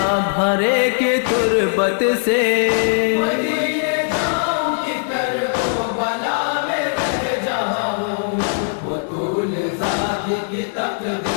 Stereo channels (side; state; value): right; silent; 66 dB below the other